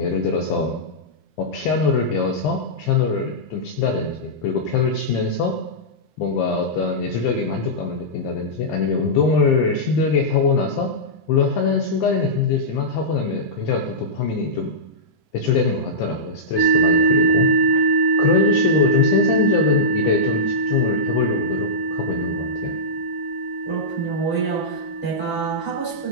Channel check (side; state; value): both; normal; correlation -0.14